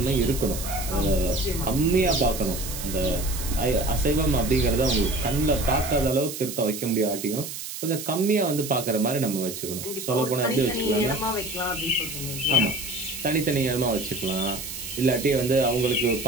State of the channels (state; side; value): noise; right; hiss, 8 dB below the sound